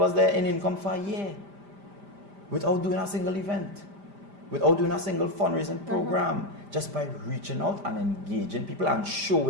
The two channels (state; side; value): late; left; 5.0 ms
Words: there in income for a year, without doing a single event, without doing a single fundraising program, just by reaching out and engaging people and